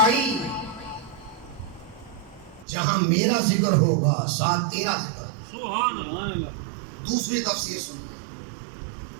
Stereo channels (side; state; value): left; drops out; at 2.7 s